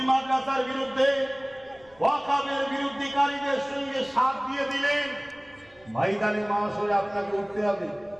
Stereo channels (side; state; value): left; noise; rumble, 30 dB below the sound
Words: মাদ্রাসার বিরুদ্ধে, ওয়াকফের বিরুদ্ধকারীদের সঙ্গে সাথ দিয়ে দিলেন, ময়দানে মাশরে আপনাকে উঠতে হবে,